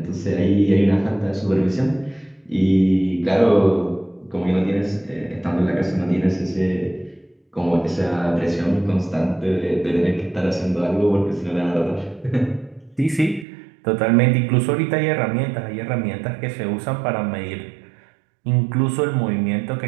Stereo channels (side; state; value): left; drops out; at 13.5 s